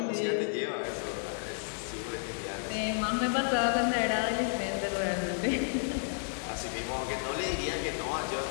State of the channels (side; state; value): right; silent; 57 dB below the other